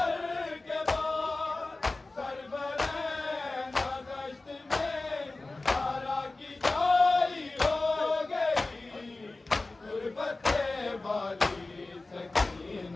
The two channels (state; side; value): quieter; right; 3.2 dB